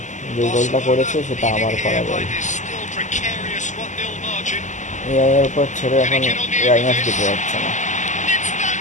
যে গোলটা করেছে সেটা আমার করা গোল। এআই এর উপর ছেড়ে এখন এআই ম্যাচ দিতে যাচ্ছে না।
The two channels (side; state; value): right; late; 0.35 ms